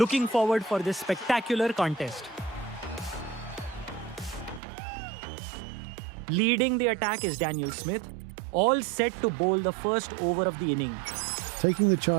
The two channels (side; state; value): left; drops out; at 4.6 s